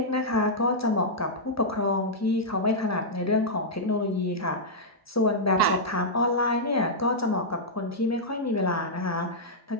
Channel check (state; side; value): normal; both; correlation -0.09